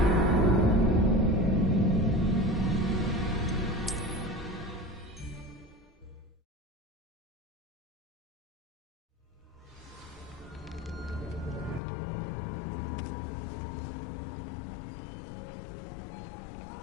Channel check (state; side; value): drops out; right; at 11.8 s